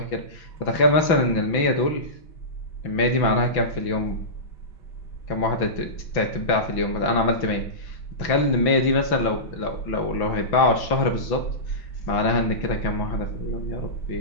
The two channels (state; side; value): late; right; 6.0 ms